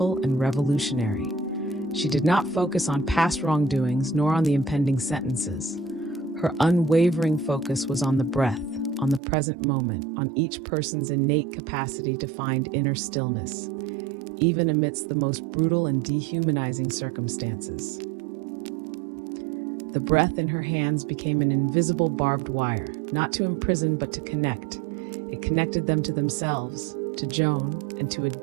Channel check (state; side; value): drops out; left; at 9.2 s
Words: and revolutionary. She did not focus on past wrongdoings nor on the impending sentences. Her unwavering focus was on the breath, on the present moment, on each person's innate capacity to find inner stillness, even amidst the most brutal and dehumanizing circumstances. The breath in her hands became an invisible barbed wire, not to imprison but to connect. It connected them to themselves, to Joan, and to a